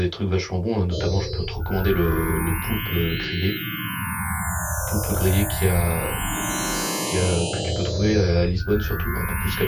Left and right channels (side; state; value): both; identical; correlation 1.00